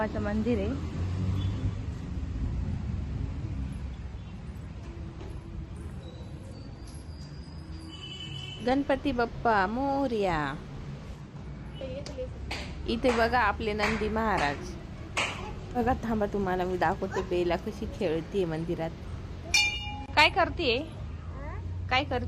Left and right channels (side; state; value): both; identical; correlation 1.00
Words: मंदिर आहे. गणपती बाप्पा मोरया. इथे बघा आपले नंदी महाराज. बघा थांबा तुम्हाला मी दाखवते बेला कशी खेळतीये मंदिरात. काय करतीये? काय